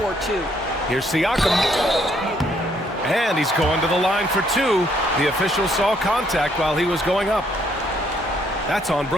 or two. Here's Siakam. And he's going to the line for 2. The official saw contact while he was going up. That's on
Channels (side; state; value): both; normal; correlation 0.69